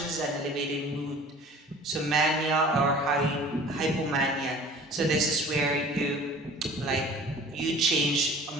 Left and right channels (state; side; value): normal; both; correlation 0.46